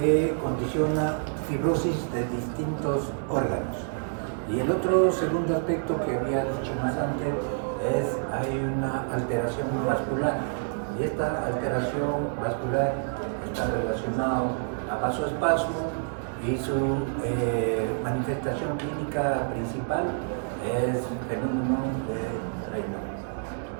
condiciona fibrosis de distintos órganos. Y el otro segundo aspecto que había dicho más antes es hay una alteración vascular. Y esta alteración vascular está relacionada a vasoespasmo y su manifestación clínica principal es fenómeno de Raynaud.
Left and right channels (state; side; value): silent; left; digital silence